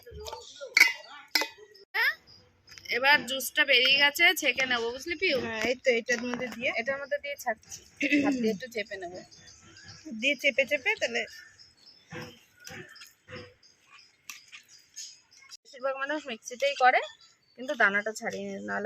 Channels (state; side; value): identical; both; correlation 1.00